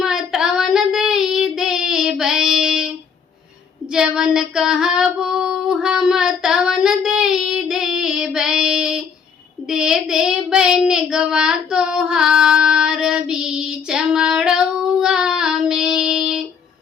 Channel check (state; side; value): quieter; right; 6.5 dB